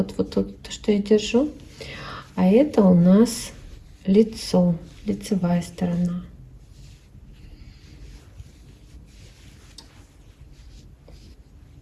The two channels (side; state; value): both; identical; correlation 1.00